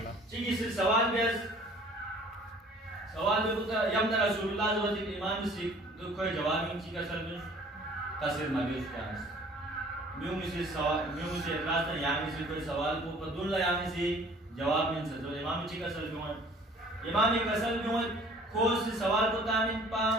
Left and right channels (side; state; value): both; normal; correlation 0.52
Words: चीज़ से सवाल बेस सवाल में होता यम ना रसूलुल्लाह जो इमाम से तो कोई जवाब नहीं चीज़ का सर में तस्वीर मौजूद क्या है म्यूं से सवाल म्यूं से रास्ता यामी से कोई सवाल को पदुल्ला यामी से जवाब नहीं सकते तो इमाम चीज़ का सर में इमाम एक असल में खोज से सवाल को तामिन पा